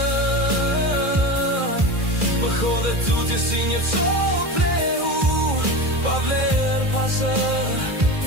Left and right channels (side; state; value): left; late; 2.4 ms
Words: më hodhe tutje si një cop lehu, pa vlerë pa zë.